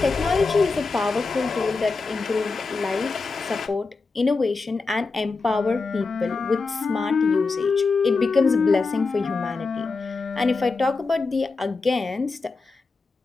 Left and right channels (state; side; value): quieter; right; 4.1 dB